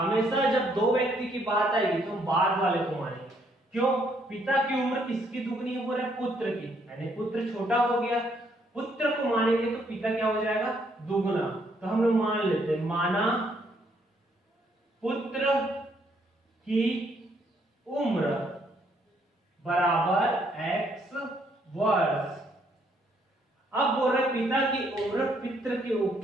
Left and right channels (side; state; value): both; normal; correlation 0.70